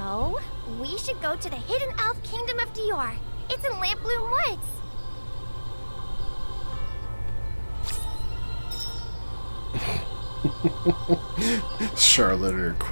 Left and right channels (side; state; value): both; inverted; correlation -1.00